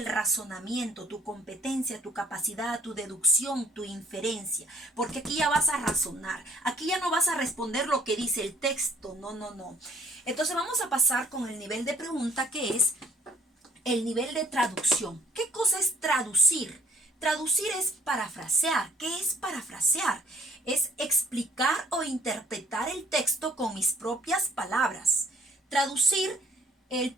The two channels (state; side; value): normal; both; correlation 0.60